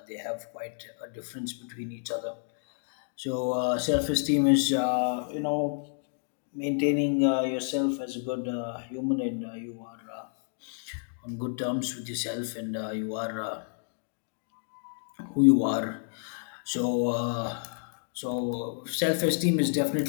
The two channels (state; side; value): silent; right; digital silence